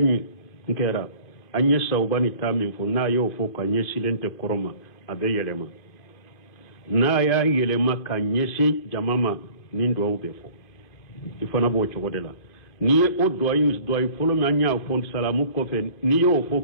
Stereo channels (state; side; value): late; right; 2.5 ms